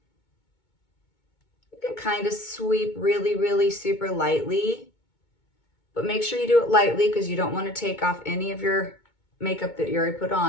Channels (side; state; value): right; late; 2.2 ms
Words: You can kind of sweep really, really super lightly. But make sure you do it lightly because you don't want to take off any of your makeup that you already put